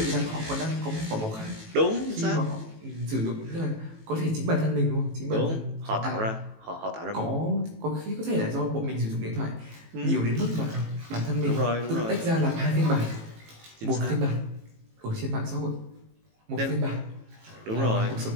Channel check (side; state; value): left; late; 18 ms